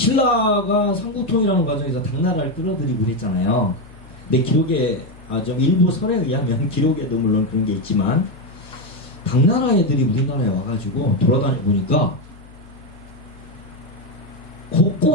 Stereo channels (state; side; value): noise; left; hum, 22 dB below the sound